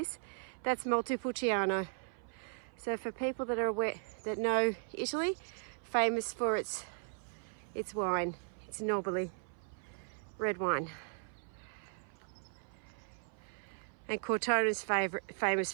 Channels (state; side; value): silent; left; 53 dB below the other